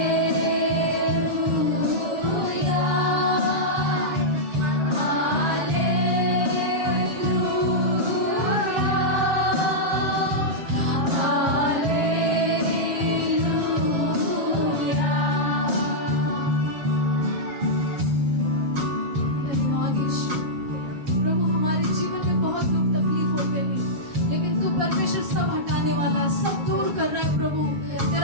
धन्यवाद यीशु। प्रभु हमारे जीवन में बहुत दुख तकलीफ होते हैं, लेकिन तू परमेश्वर सब हटाने वाला, सब दूर कर रहा है प्रभु।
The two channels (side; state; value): left; late; 7.6 ms